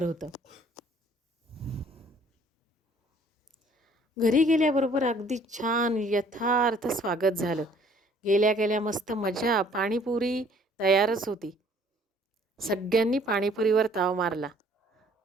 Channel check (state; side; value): normal; both; correlation 0.58